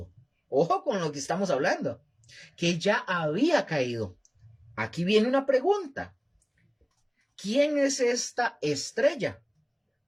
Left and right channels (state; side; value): identical; both; correlation 1.00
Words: Ojo con lo que estamos hablando, que ya había caído. Aquí viene una pregunta. ¿Quién es esta estrella?